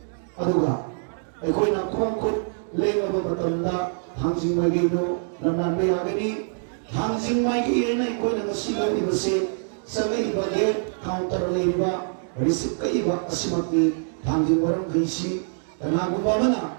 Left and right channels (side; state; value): left; silent; digital silence